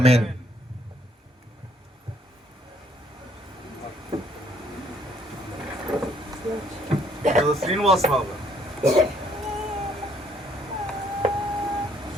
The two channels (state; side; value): normal; both; correlation 0.66